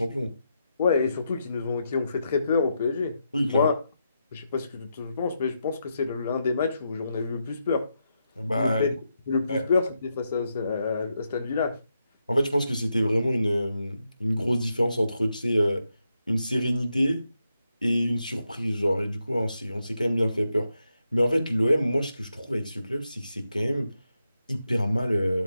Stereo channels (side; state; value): both; inverted; correlation -0.84